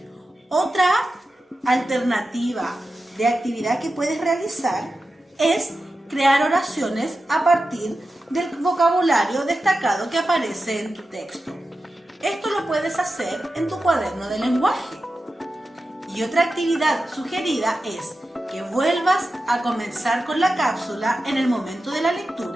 Otra alternativa de actividad que puedes realizar es crear oraciones a partir del vocabulario destacado que aparece en tu texto. Esto lo puedes hacer en tu cuaderno de lenguaje. Y otra actividad sugerida es que vuelvas a comenzar con la cápsula en el momento de la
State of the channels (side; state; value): both; normal; correlation 0.92